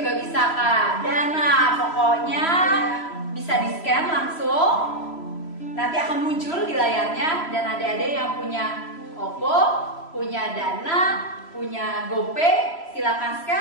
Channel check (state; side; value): late; right; 3.0 ms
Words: juga bisa Kak. Dana pokoknya bisa di scan langsung. Nanti akan muncul di layarnya, dan adik-adik yang punya OVO punya Dana, punya GoPay, silakan